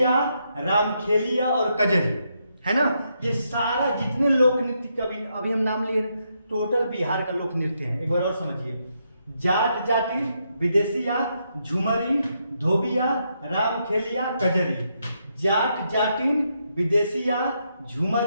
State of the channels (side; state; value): both; inverted; correlation -0.79